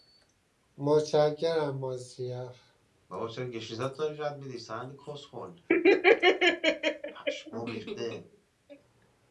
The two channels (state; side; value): identical; both; correlation 1.00